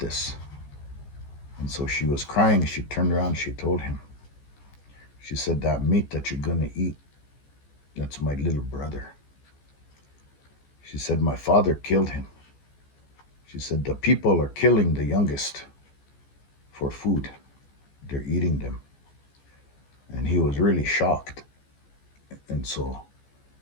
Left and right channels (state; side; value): late; right; 14 ms